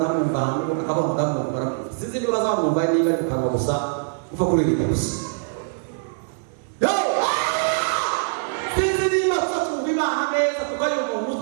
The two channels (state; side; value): silent; left; 63 dB below the other